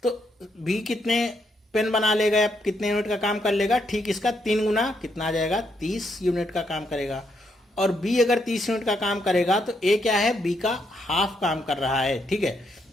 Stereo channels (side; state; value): both; normal; correlation 0.77